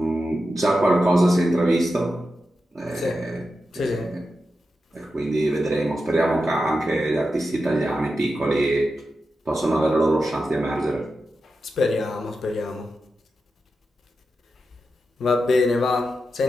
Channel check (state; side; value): normal; both; correlation 0.90